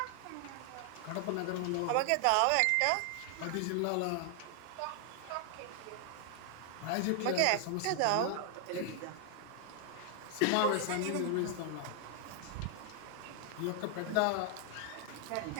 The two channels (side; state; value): both; different; correlation 0.00